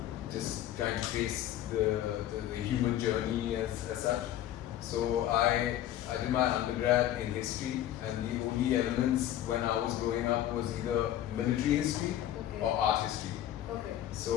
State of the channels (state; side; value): quieter; right; 12.2 dB